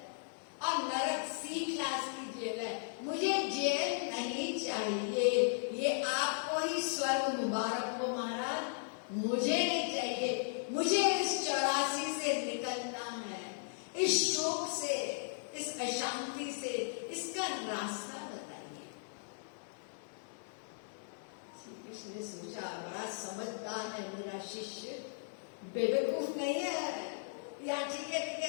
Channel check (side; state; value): right; silent; 53 dB below the other